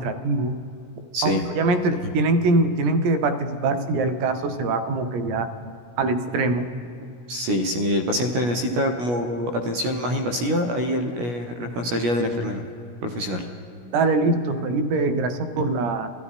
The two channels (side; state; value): left; late; 17 ms